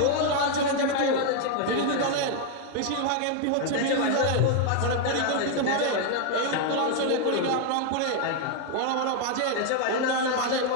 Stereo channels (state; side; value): different; both; correlation 0.00